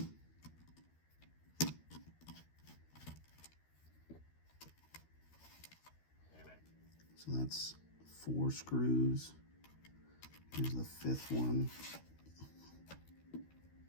So that's 4 screws. Here's the 5th one.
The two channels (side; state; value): right; late; 13 ms